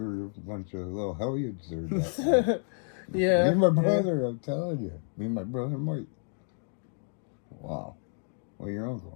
were a bunch of little hellions there that time. Yeah. Me and my brother, I'm telling you. Me and my brother Mike. Wow. Well, your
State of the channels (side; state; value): right; silent; 58 dB below the other